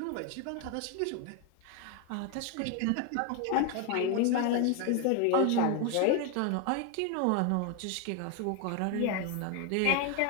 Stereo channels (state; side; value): different; both; correlation 0.01